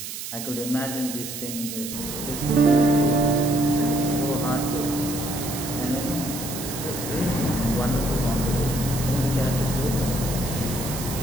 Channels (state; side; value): noise; right; hiss, 8 dB below the sound